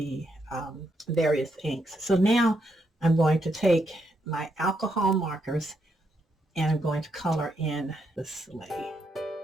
various inks. So now I'm going to take my alcohol markers and I'm going to color in the sleigh.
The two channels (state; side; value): normal; both; correlation 0.79